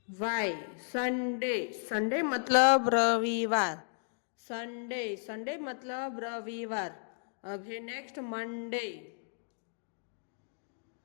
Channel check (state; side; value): silent; right; digital silence